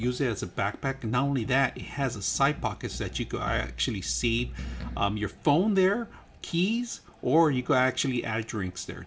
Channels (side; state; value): both; identical; correlation 1.00